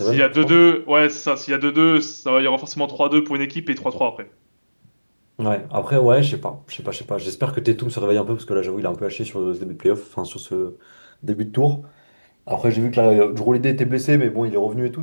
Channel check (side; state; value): both; inverted; correlation -1.00